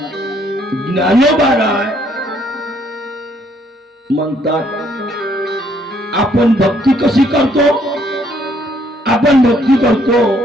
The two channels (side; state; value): both; normal; correlation 0.67